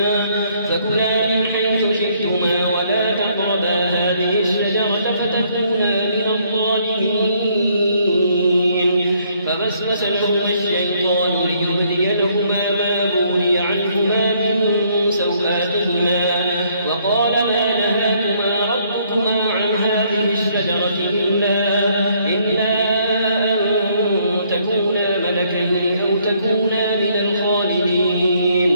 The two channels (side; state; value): both; inverted; correlation -0.67